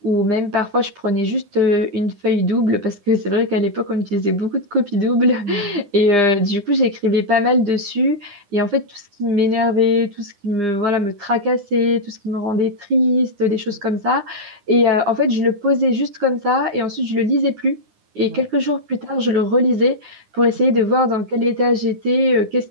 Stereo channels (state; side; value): late; left; 9.8 ms